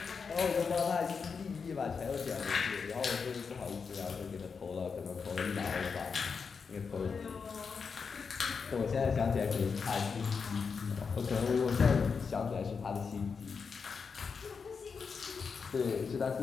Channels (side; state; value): right; quieter; 5.5 dB